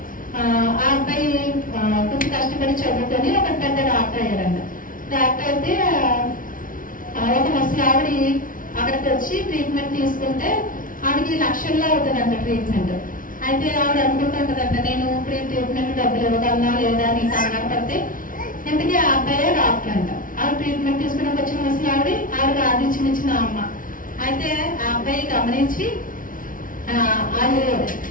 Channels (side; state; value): right; late; 0.39 ms